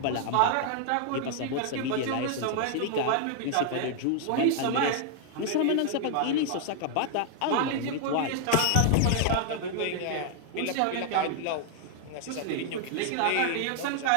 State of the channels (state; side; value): different; both; correlation 0.00